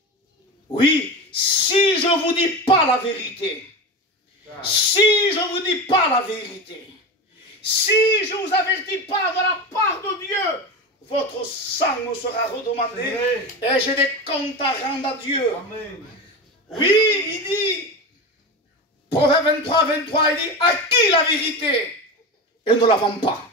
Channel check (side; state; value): both; normal; correlation 0.23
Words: Oui, si je ne vous dis pas la vérité, si je ne vous dis pas la vérité, si je ne vous avertis pas de la part de Dieu, votre sang me sera redemandé et j'ai des comptes à rendre à Dieu. Amen. Oui, il dit, Proverbe 23, 23, il dit, à qui la vérité? Et ne la vend pas.